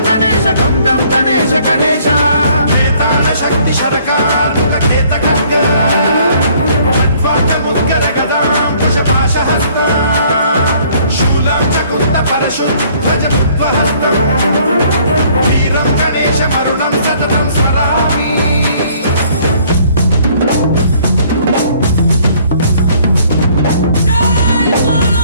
గణేశ గం గం గణేశ గణేశ వేదాన శక్తి శరకార్ ఖేత ఖడ్గ మద్వాట ముద్గర గదాం కుశపాశ హస్త శూలం చకుంత పరశుధ్వజ ముద్వహస్త వీరం గణేశ మరుణం సతతం స్మరామి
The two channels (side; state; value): both; inverted; correlation -0.60